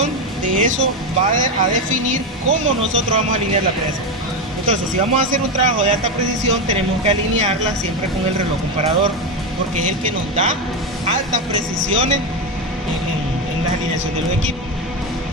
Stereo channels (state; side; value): normal; both; correlation 0.12